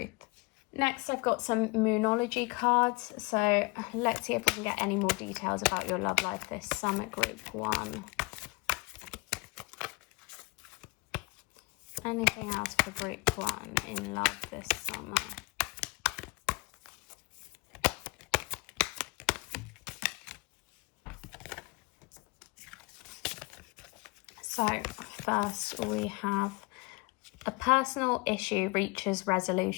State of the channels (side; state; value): right; quieter; 26.5 dB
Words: Next, I've got some Moonology cards. So let's see if we can get any more details about your love life this summer, group 1. Anything else for group 1 in love this summer? So first we have a personal issue reaches